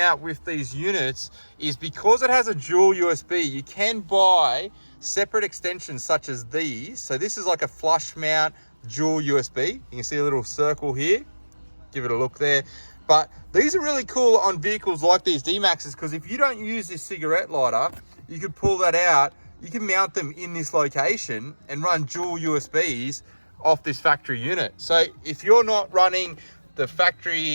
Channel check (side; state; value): both; inverted; correlation -1.00